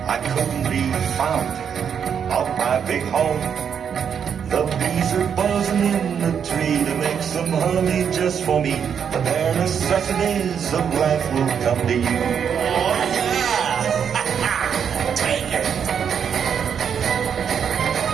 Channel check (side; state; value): left; quieter; 7.6 dB